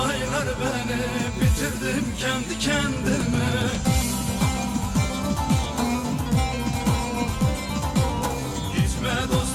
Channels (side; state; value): both; identical; correlation 1.00